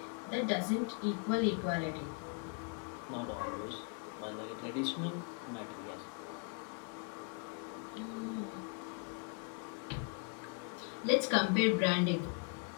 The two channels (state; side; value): quieter; right; 39.4 dB